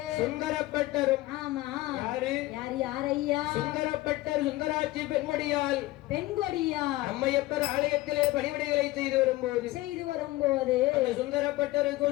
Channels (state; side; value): quieter; right; 18.3 dB